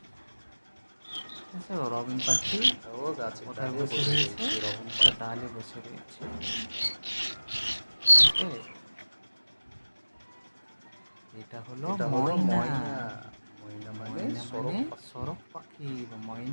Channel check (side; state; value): both; inverted; correlation -1.00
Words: ঠিক আছে, রবিন পাখি ও গাছে কোথায় ডালে বসে রয়েছে? রকম একটা ডালে বসে রয়েছে। ওকে। এটা হলো ময়না। ময়না মানে ময়না সরক মানে পাখি। সরক পাখি বা